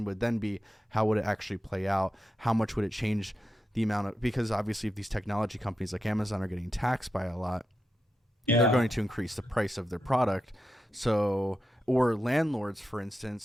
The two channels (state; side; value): normal; both; correlation 0.88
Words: would then be, how would it actually play out? How much would it change the amount of, because obviously if these technology companies like Amazon are getting taxed by a lot, they're going to increase the price of their product. So, or landlords, for instance.